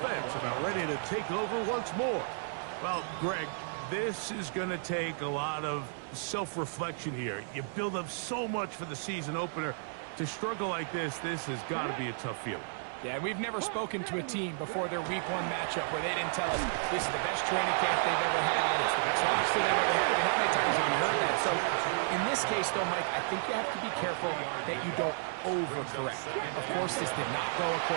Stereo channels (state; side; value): silent; left; 56 dB below the other